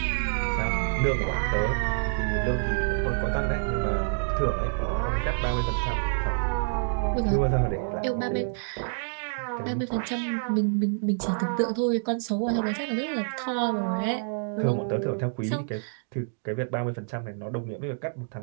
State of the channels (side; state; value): left; silent; digital silence